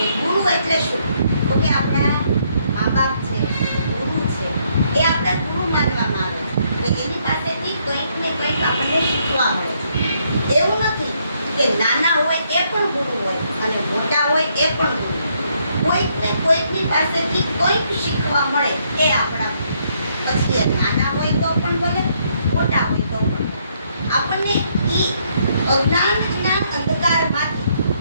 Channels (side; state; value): both; inverted; correlation -0.72